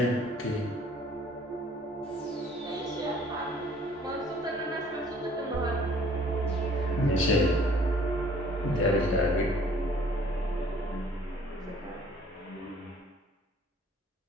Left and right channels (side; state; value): both; normal; correlation 0.56